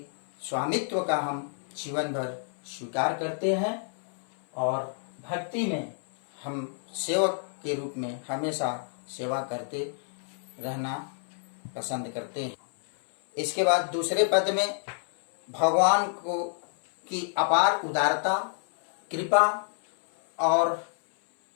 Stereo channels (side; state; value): right; silent; 59 dB below the other